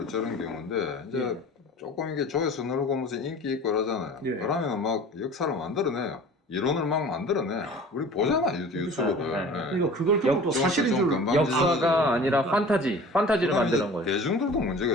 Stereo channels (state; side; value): normal; both; correlation 0.42